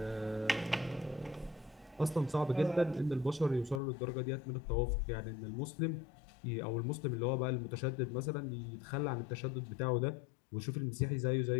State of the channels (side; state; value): right; drops out; at 3.8 s